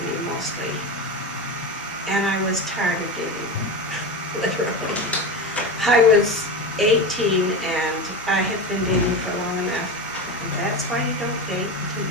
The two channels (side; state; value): both; normal; correlation 0.22